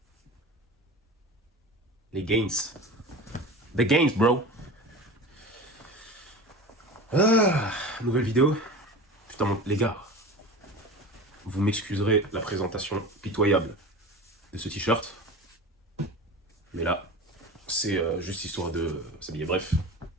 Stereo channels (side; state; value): both; normal; correlation 0.33